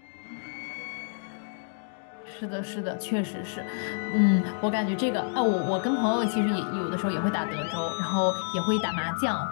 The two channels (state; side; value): silent; right; digital silence